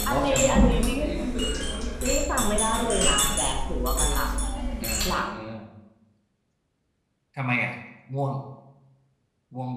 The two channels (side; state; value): both; identical; correlation 1.00